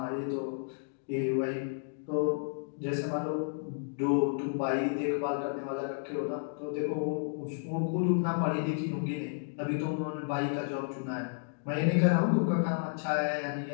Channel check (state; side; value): silent; right; digital silence